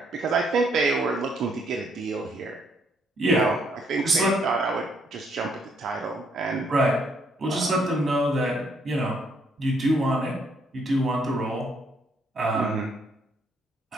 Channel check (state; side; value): normal; both; correlation 0.70